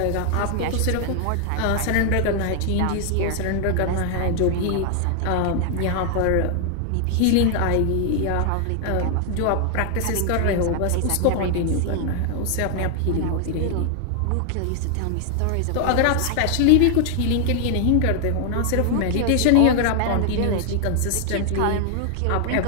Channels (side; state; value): both; different; correlation 0.00